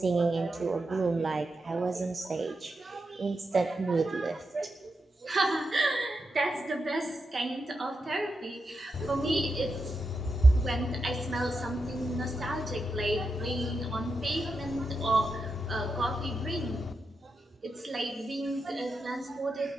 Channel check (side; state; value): both; normal; correlation 0.87